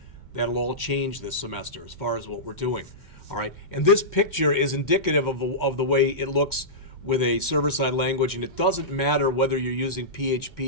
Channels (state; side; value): late; right; 2.1 ms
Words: That'll all change this semester as far as what we're doing. All right, and this picture is indicative of the way it looks with a server-side language, and it doesn't matter whether you're using